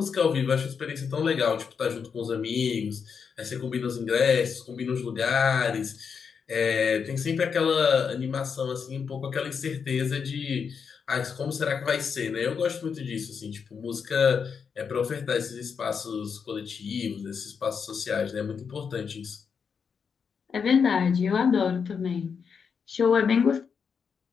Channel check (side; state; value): right; quieter; 6.3 dB